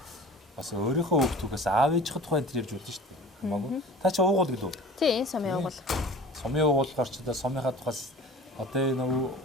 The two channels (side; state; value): both; normal; correlation 0.41